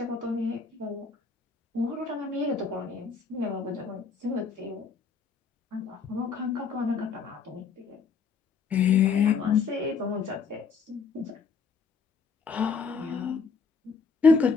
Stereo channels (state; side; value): quieter; right; 5.3 dB